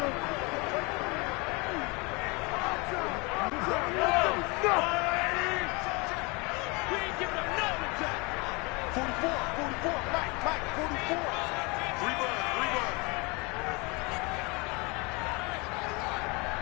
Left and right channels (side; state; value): right; quieter; 28.0 dB